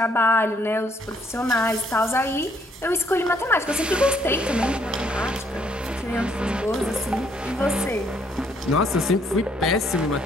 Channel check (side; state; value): both; normal; correlation 0.68